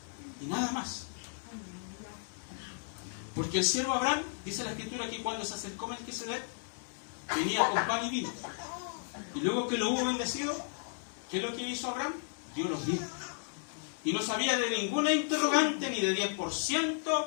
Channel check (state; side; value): silent; right; digital silence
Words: Y nada más. Porque el siervo Abraham, dice la Escritura que cuando se acercó Melquisedec, venía con pan y vino. Y luego que lo hubo bendecido, ¿qué es lo que hizo Abraham? Dio los diezmos. Y no sabía de ninguna interrogante, ni de 10%,